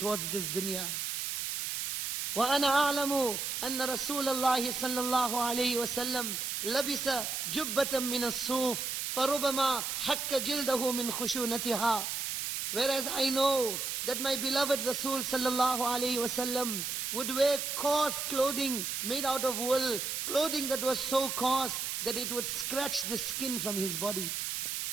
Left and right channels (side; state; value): right; noise; hiss, 2 dB below the sound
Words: this dunya. وَأَنَا أَعْلَمُ أَنَّ رَسُولَ اللَّهِ صَلَّى اللَّهُ عَلَيْهِ وَسَلَّمْ لَبِسَ جُبَّةً مِّنَ الصُّوفِ فَرُبَمَا حَكَّ جِلْدَهُ مِنْ خُشُونَتِهَا. Whereas I know that my beloved Rasul sallallahu alayhi wasallam would wear coarse clothing made out of wool, clothing that was so coarse that it would scratch the skin from his body.